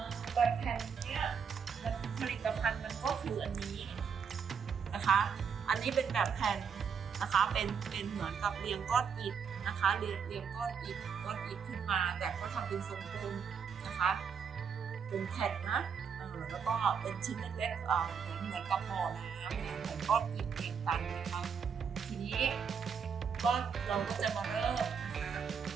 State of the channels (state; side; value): quieter; left; 6.6 dB